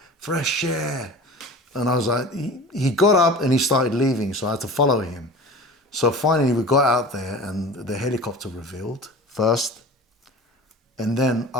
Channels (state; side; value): normal; both; correlation 0.38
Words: Fresh air. And I was like, he got up and he started leaving, so I had to follow him. So finally we got out there and the helicopter revealed first, and then